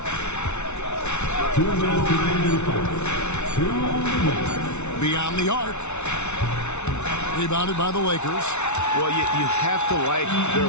Beyond the arc. Rebounded by the Lakers. Well, you have to like their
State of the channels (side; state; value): right; late; 0.82 ms